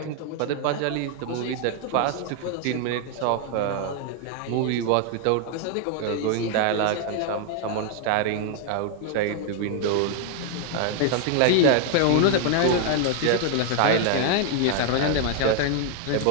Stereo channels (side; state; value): both; different; correlation 0.00